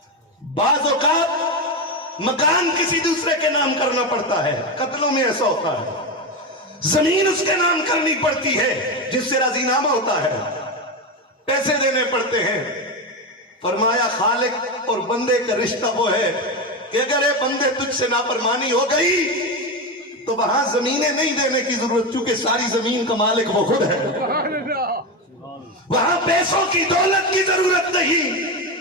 بعض اوقات مکان کسی دوسرے کے نام کرنا پڑتا ہے، قتلوں میں ایسا ہوتا ہے، زمین اس کے نام کرنی پڑتی ہے جس سے راضی نامہ ہوتا ہے، پیسے دینے پڑتے ہیں۔ فرمایا خالق اور بندے کا رشتہ وہ ہے کہ اگر اے بندے تجھ سے نافرمانی ہو گئی تو وہاں زمینیں نہیں دینے کی ضرورت، چونکہ ساری زمین کا مالک وہ خود ہے۔ وہاں پیسوں کی دولت کی ضرورت نہیں،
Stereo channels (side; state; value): both; normal; correlation 0.15